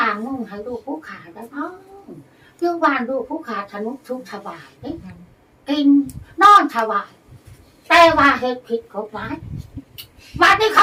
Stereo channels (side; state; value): both; identical; correlation 1.00